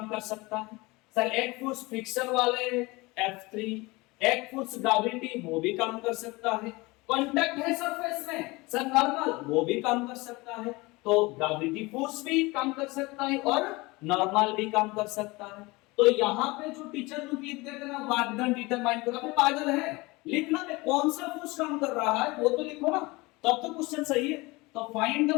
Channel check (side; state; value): right; quieter; 23.3 dB